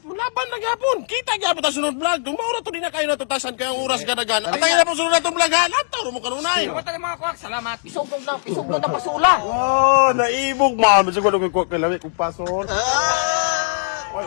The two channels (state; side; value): silent; right; digital silence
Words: laban na gyapon. Kita gyapon ta sunod vlog. Dumaura to din na kayo natutasan kay ang oras gadagan. At ay na po sunod natong vlog ha. Lantaw mo kanunay. Salamat mga kuwak, salamat. Isugnog na pasula. Oh, naibog man. Bisag ko kay kuha kay lawi kung pasol. Ah! Ay,